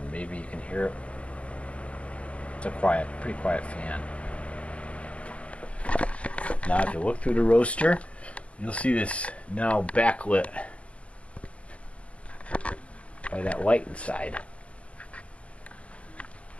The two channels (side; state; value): right; late; 0.062 ms